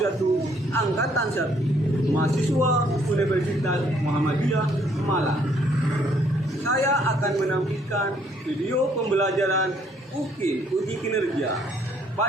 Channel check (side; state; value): both; normal; correlation 0.66